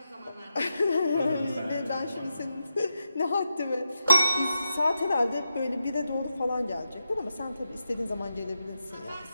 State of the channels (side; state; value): both; inverted; correlation -0.88